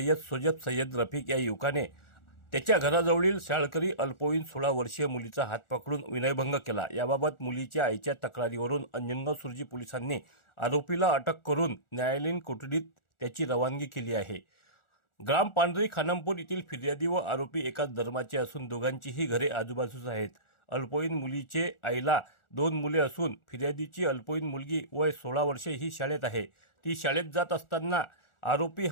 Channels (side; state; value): right; late; 1.4 ms